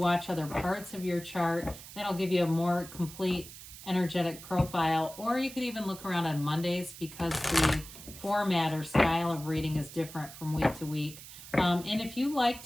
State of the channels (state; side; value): noise; right; hiss, 15 dB below the sound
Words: other parts of your chart. That'll give you a more complete energetic profile. Or you could even look around on Mondays because the format or style of reading is different from week to week. And if you like